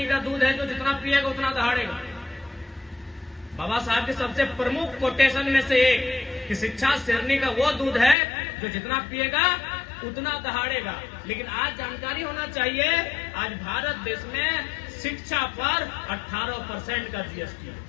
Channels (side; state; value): right; drops out; at 8.2 s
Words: का दूध है, जो जितना पिएगा उतना दहाड़ेगा। बाबा साहब के सबसे प्रमुख कोटेशन में से एक कि शिक्षा शेरनी का वो दूध है जो जितना पिएगा उतना दहाड़ेगा। लेकिन आज जानकारी होना चाहिए, आज भारत देश में शिक्षा पर 18% का जीएसटी है